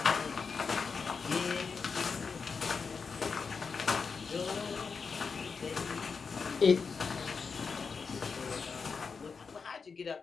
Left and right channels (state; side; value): quieter; right; 5.3 dB